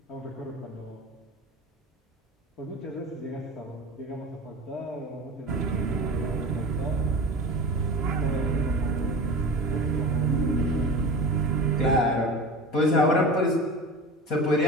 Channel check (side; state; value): both; normal; correlation 0.31